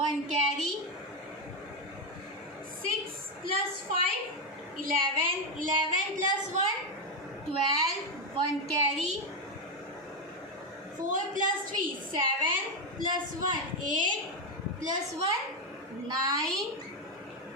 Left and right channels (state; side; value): normal; both; correlation 0.08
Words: carry. 6 plus 5, 11. 11 plus 1, 12. 1 carry. 4 plus 3, 7. Plus 1, 8. Plus 1, 9.